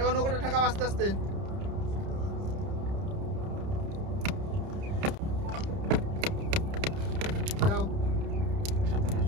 নৌকাটা ঠাকা আস্তে আস্তে যাও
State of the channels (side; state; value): left; late; 30 ms